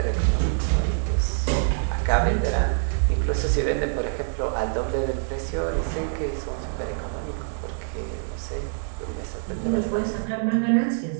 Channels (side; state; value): left; silent; digital silence